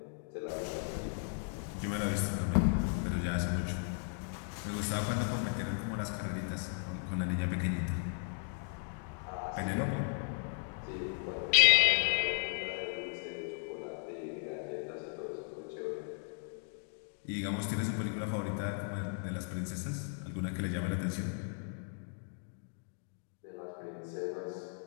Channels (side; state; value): right; silent; 54 dB below the other